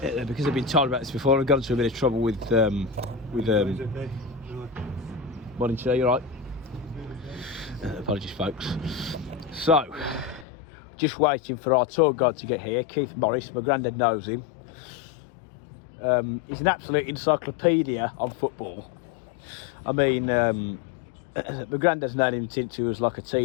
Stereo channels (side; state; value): right; drops out; at 10.5 s